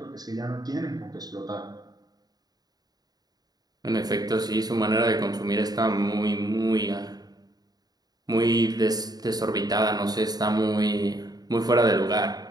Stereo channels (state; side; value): late; left; 0.19 ms